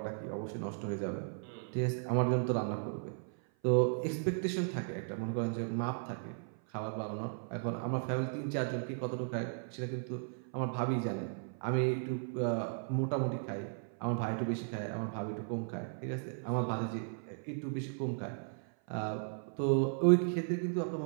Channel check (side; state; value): left; silent; 54 dB below the other